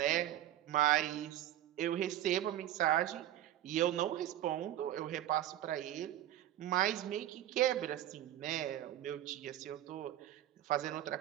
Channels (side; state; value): left; quieter; 12.9 dB